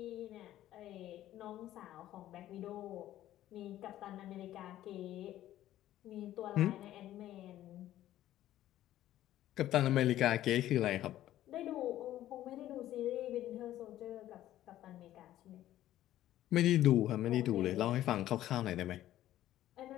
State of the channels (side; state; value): right; quieter; 13.4 dB